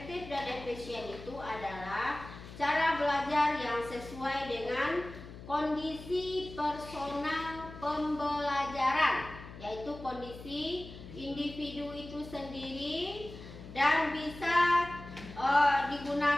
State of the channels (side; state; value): left; noise; hum, 14 dB below the sound